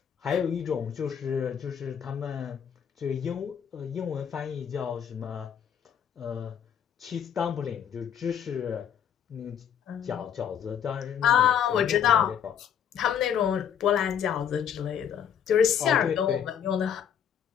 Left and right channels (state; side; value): quieter; right; 8.5 dB